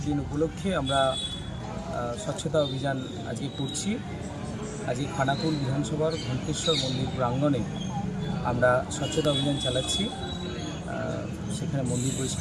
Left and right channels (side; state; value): both; identical; correlation 1.00